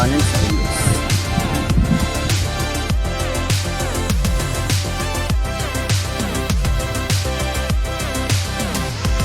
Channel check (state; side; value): identical; both; correlation 1.00